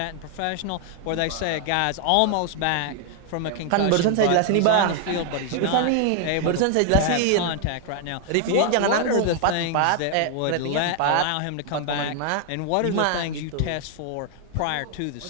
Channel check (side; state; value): both; different; correlation 0.00